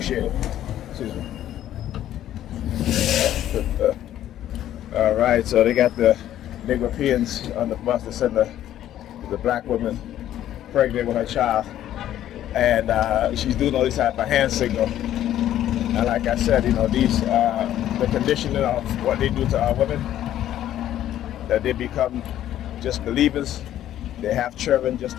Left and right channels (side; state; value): right; quieter; 12.1 dB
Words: Appreciate it. Excuse me. All right, so they got the Negropeans on the bus to send the black woman pregnant with her child, and she's doing all these type of hand signal. And like I said, these the conditioning of what they do to our women, that they become just believers. They have children just